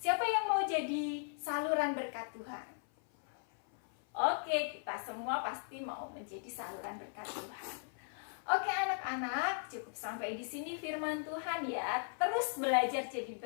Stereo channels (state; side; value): silent; right; 53 dB below the other